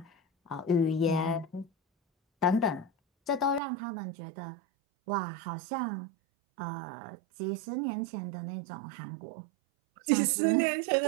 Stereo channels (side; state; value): left; drops out; at 3.6 s